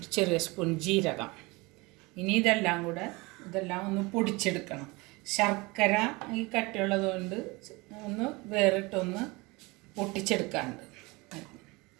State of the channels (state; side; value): quieter; left; 24.5 dB